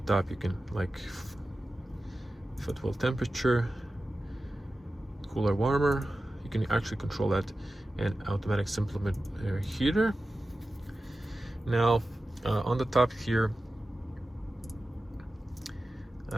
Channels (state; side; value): normal; both; correlation 0.94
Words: top you can like footwell temperature, cooler, warmer. You can actually control that, and automatic supplement heater. Now on the top here,